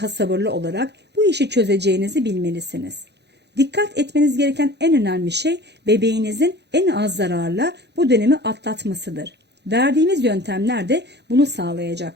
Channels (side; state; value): left; late; 0.50 ms